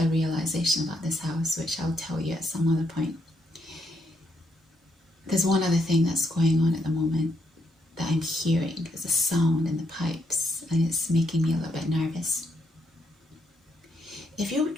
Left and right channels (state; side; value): normal; both; correlation 0.77